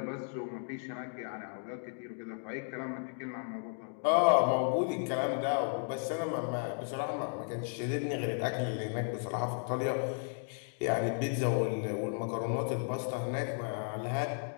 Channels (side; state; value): right; silent; digital silence